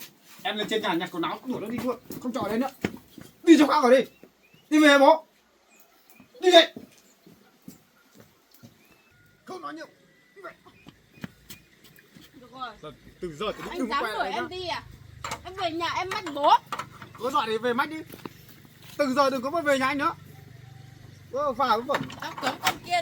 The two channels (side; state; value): both; identical; correlation 1.00